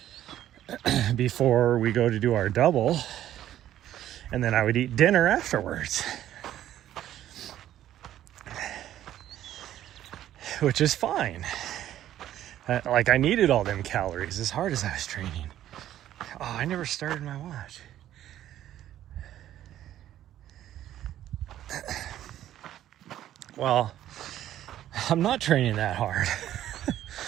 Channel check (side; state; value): left; quieter; 12.2 dB